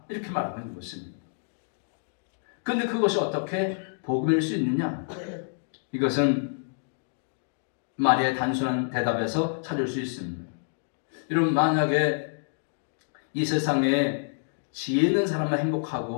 이렇게 말하고 있는 것입니다. 그런데 그것이 어떻게 복음일 수 있느냐? 이것은 마리아의 단순한 대답에서 찾을 수 있습니다. 여러분, 만약에 이 세상에 지혜 있는 사람만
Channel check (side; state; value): right; silent; digital silence